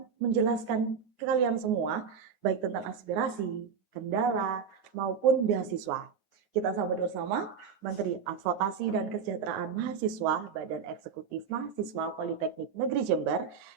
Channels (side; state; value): left; quieter; 6.4 dB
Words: menjelaskan ke kalian semua, baik tentang aspirasi, kendala, maupun beasiswa. Kita sambut bersama Menteri Advokasi dan Kesejahteraan Mahasiswa Badan Eksekutif Mahasiswa Politeknik Negeri Jember,